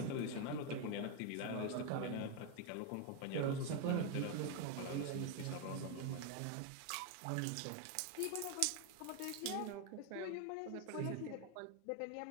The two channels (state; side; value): different; both; correlation 0.01